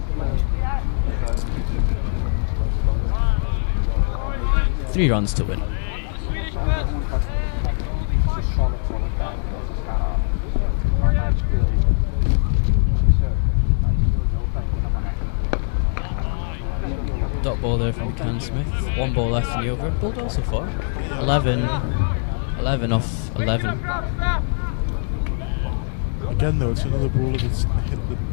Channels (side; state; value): right; silent; 64 dB below the other